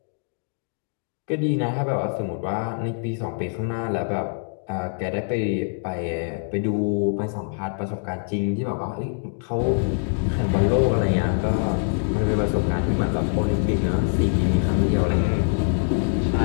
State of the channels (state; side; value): silent; right; digital silence